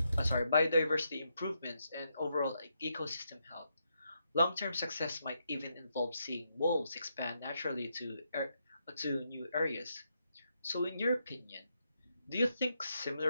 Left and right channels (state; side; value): inverted; both; correlation -0.81